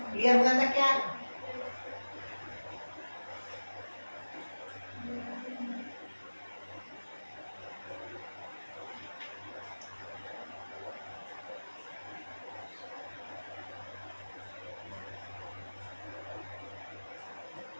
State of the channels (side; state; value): both; inverted; correlation -1.00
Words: क्लियर हो जाता क्या,